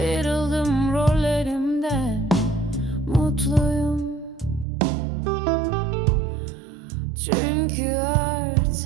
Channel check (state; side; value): drops out; left; at 4.7 s